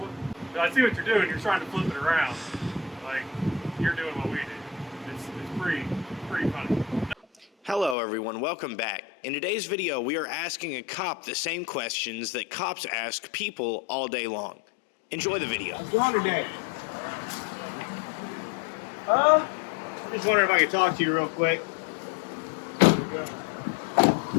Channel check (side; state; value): right; drops out; at 8.0 s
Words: I see what you're doing. You're trying to flip it around. Like, you're doing what we do. It's pretty funny. Hello everyone, welcome back. In today's video, we are asking a cop the same questions that cops ask people all day long. Enjoy the video. How's it going today? I'm just wondering if I could talk to you real quick.